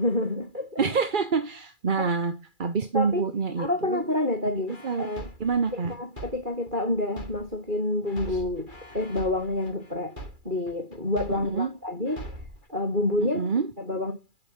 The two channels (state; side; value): late; left; 2.3 ms